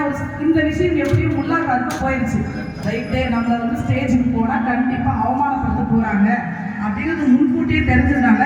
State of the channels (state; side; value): identical; both; correlation 1.00